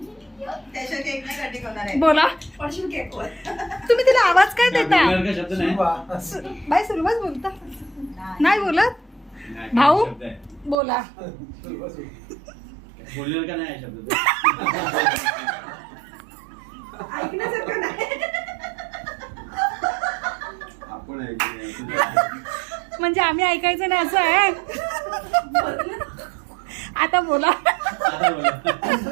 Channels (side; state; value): left; drops out; at 10.8 s